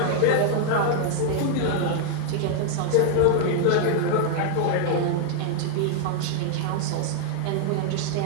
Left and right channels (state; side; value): different; both; correlation 0.00